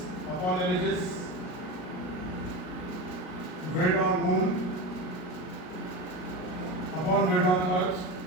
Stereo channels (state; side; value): late; right; 38 ms